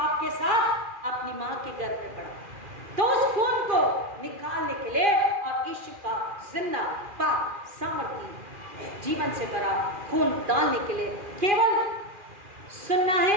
के साथ अपनी माँ के गर्भ में पड़ा। तो उस खून को निकालने के लिए और यीशु का जिंदा, पाक, सामर्थी, जीवन से भरा खून डालने के लिए केवल सुनना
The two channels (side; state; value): left; late; 2.4 ms